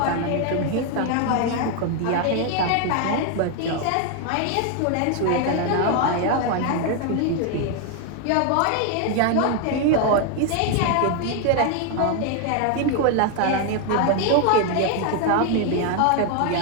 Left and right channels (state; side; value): different; both; correlation 0.01